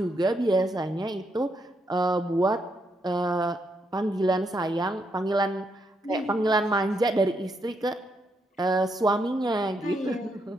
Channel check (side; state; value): both; normal; correlation 0.78